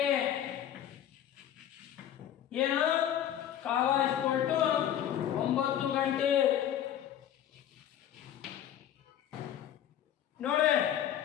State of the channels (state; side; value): quieter; right; 10.6 dB